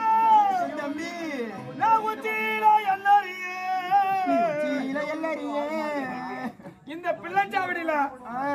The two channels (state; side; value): identical; both; correlation 1.00